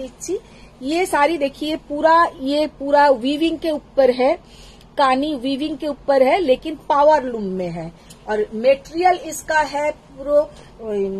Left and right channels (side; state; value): both; identical; correlation 1.00